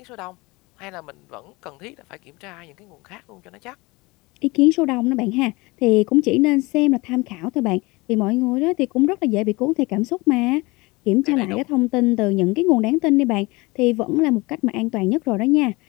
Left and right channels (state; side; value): quieter; right; 23.8 dB